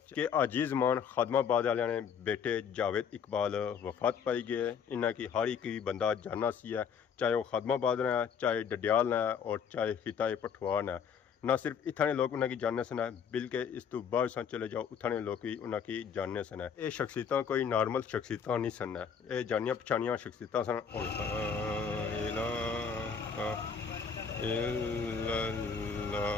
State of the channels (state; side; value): quieter; right; 6.8 dB